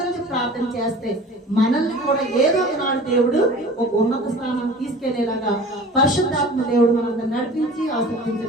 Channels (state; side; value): normal; both; correlation 0.41